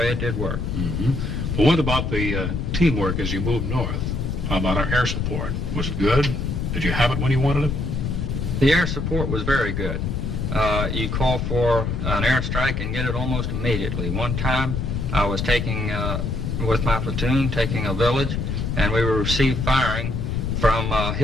it did work. Mm-hmm. Well, what about the teamwork as you moved north? How about our air support? Was it good? Did you have it when you wanted it? The air support was very good. You call for an airstrike and get it almost immediately. One time I was taking, with my platoon, taking a village, and we received firing from a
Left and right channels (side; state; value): left; noise; rumble, 2 dB below the sound